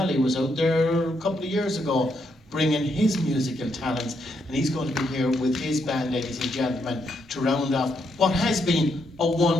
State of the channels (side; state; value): both; normal; correlation 0.78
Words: was out there a couple of years ago bringing his musical talents, and he's going to be here with his band, ladies and gentlemen, to round off what has been a